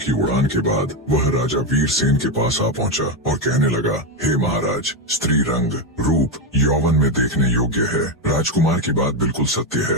उड़ान के बाद वह राजा वीरसेन के पास आ पहुँचा और कहने लगा, हे महाराज, स्त्री रंग, रूप, यौवन में देखने योग्य है। राजकुमार की बात बिल्कुल सत्य है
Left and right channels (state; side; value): normal; both; correlation 0.09